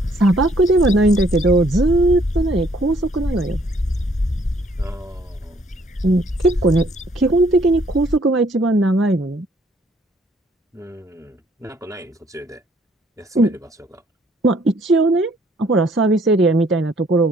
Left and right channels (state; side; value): normal; both; correlation 0.64